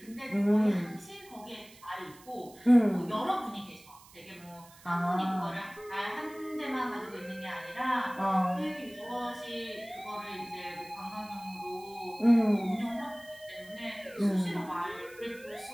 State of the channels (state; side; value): noise; right; hiss, 23 dB below the sound